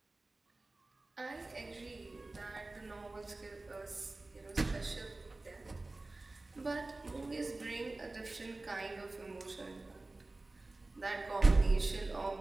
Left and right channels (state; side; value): quieter; left; 3.1 dB